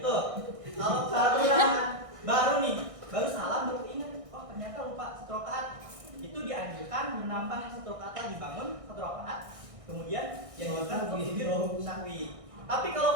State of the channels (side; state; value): left; late; 1.6 ms